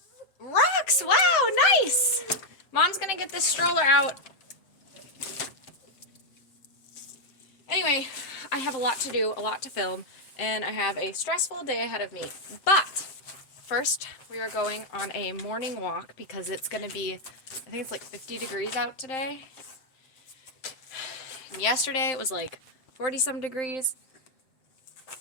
Rocks! Wow, nice! Mom's going to get this stroller out. Anyway, I have a lot to do, a lot to film, and I have a stressful day ahead of me. But first, we are going on a morning walk because it's going to be, I think it's like 50 degrees out today. And yesterday it was like 40 some degrees.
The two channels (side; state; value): right; late; 7.7 ms